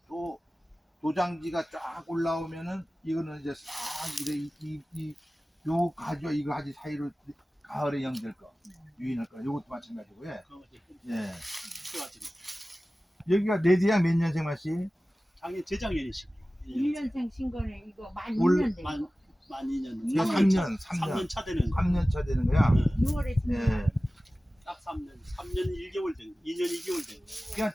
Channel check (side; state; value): both; normal; correlation 0.97